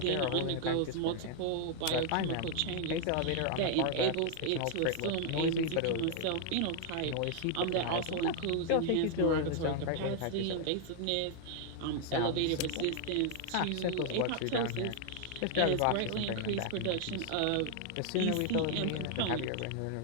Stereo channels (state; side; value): different; both; correlation 0.00